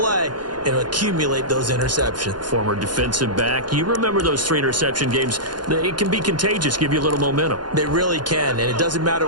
and accumulate those interceptions. Former defensive back. You remember those 3 interception games. It can be contagious, give you a little momentum. They really can, and it doesn't matter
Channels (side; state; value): left; late; 0.71 ms